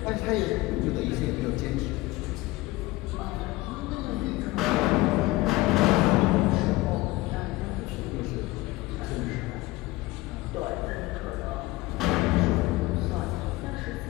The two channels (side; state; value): right; quieter; 19.8 dB